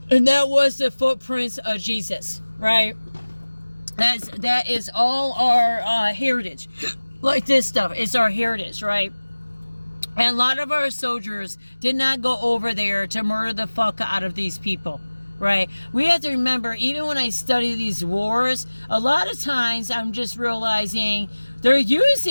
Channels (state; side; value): inverted; both; correlation -1.00